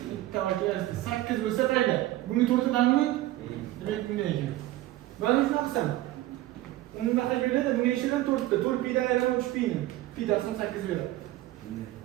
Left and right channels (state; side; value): quieter; left; 16.0 dB